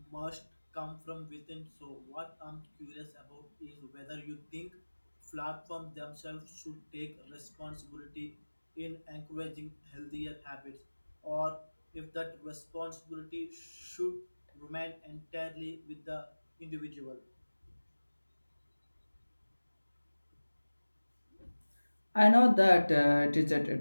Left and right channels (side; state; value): both; inverted; correlation -1.00